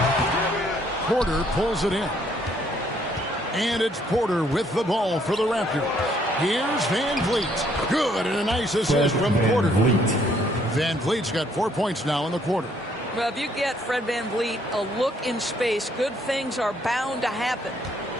Porter pulls it in. And it's Porter with the ball for the Raptors. Here's Van Vliet. Good, and a nice assist from Porter. Van Vliet's got 4 points now in the quarter. Well, if you get Fred Van Vliet a look in space, good things are bound to happen.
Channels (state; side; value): normal; both; correlation 0.67